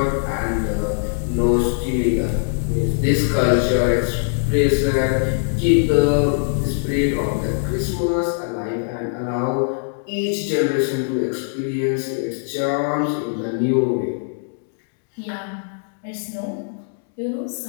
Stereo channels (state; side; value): silent; right; digital silence